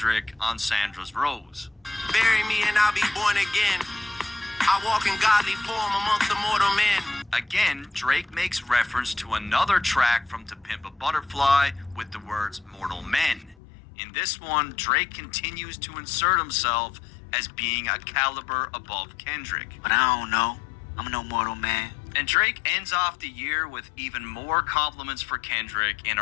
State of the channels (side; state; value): right; drops out; at 13.6 s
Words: on Sandra's Rose. Bury me and I'll be born again. I walk in godly form amongst the mortal men. Again, Drake makes reference to another track from To Pimp a Butterfly with the words Mortal Men. In this one, Drake continues to insert himself as being a caliber above Kendrick. But I don't know. I'm no mortal man. And Drake ends off the year with even more compliments for Kendrick in